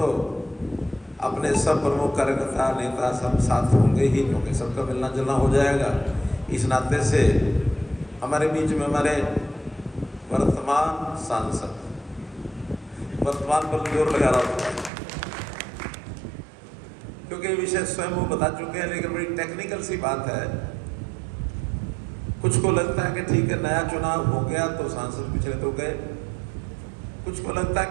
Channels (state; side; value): drops out; left; at 14.9 s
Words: अपने सब प्रमुख कार्यकर्ता नेता सब साथ होंगे ही, क्योंकि सबका मिलना जुलना हो जाएगा। इस नाते से हमारे बीच में हमारे वर्तमान सांसद, वर्तमान पर जोर लगा रहा होता है क्योंकि विषय स्वयं वो बता चुके हैं, लेकिन बड़ी टेक्निकल सी बात है। कुछ को लगता है कि ठीक है नया चुनाव हो गया तो सांसद पिछले तो गए, कुछ को लगता है